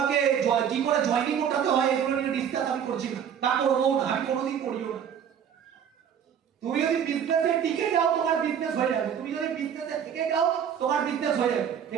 কি করে জয়েনিং ওঠাতে হয় এগুলো নিয়ে ডিসকাস আমি করছি না, তা করবো না, আমি কোনোদিন করিও না। তুমি যদি বিজনেসে টিকে যাও তোমার বিজনেস হয়ে যাবে, তুমি যদি বিজনেসে থেকে যাও তোমার বিজনেস হয়ে যাবে।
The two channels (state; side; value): quieter; left; 8.4 dB